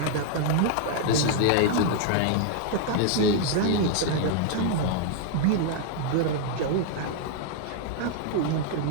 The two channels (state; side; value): different; both; correlation 0.00